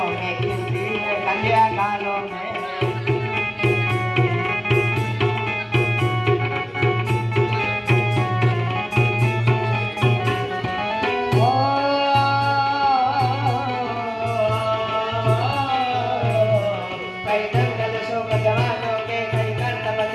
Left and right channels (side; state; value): both; identical; correlation 1.00